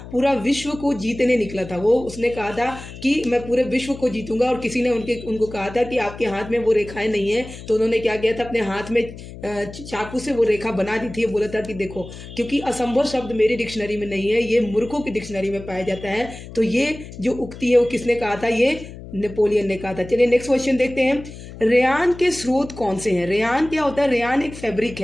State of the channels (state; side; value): noise; left; hum, 14 dB below the sound